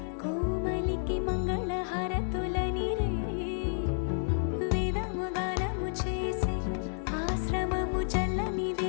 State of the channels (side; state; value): right; silent; digital silence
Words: కోమలికి మంగళ హారతులనిరే వేదము గానము చేసే ఆశ్రమము చల్లని